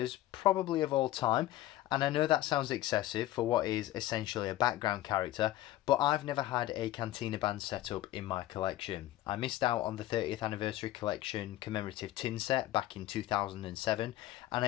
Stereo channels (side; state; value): right; quieter; 14.9 dB